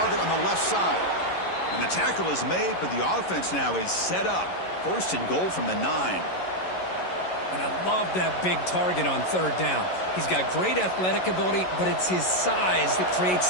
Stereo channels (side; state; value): right; late; 11 ms